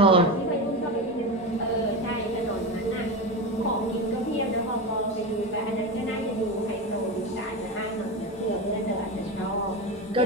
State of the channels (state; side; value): normal; both; correlation 0.20